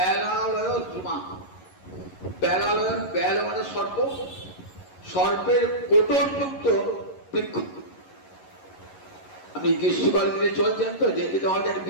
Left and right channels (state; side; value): late; right; 11 ms